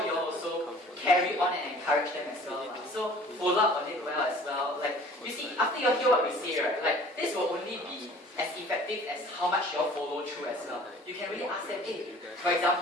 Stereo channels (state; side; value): normal; both; correlation 0.48